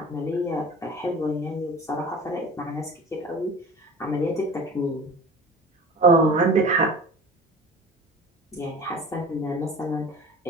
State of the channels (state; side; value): normal; both; correlation 0.39